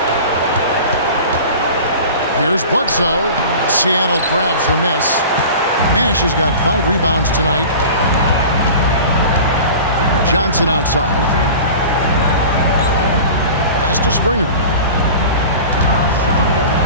Here's Bledsoe. Seattle grabs the miss. Nash has got 5 rebounds tonight. Johnson outside. Pass to Springer.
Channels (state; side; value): inverted; both; correlation -0.37